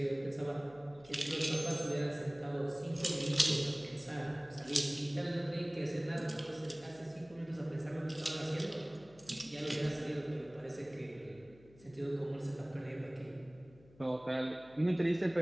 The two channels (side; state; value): left; noise; hum, 24 dB below the sound